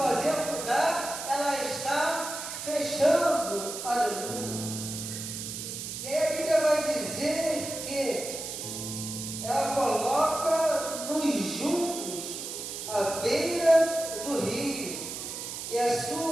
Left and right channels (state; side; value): noise; right; hiss, 7 dB below the sound